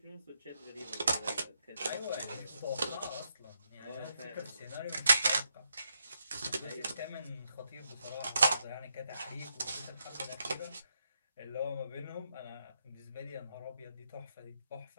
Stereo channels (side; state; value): both; inverted; correlation -0.80